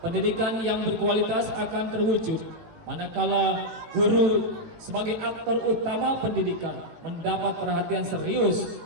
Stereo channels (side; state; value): left; late; 18 ms